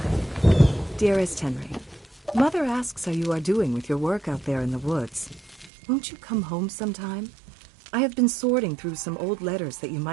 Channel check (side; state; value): left; drops out; at 5.7 s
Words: Dearest Henry, Mother asks how you are doing with your work out there in the woods. Won't you come home sometime? I have been sorting through some old letters that you